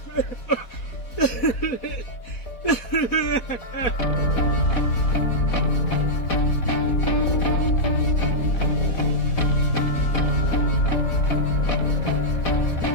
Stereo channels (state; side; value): late; right; 4.1 ms